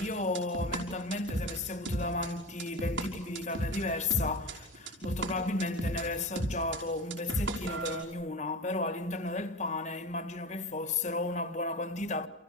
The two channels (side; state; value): both; normal; correlation 0.28